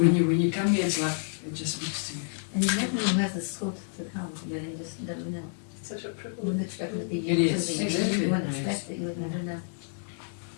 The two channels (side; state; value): right; silent; digital silence